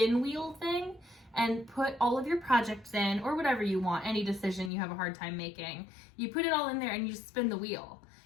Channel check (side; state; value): right; drops out; at 4.7 s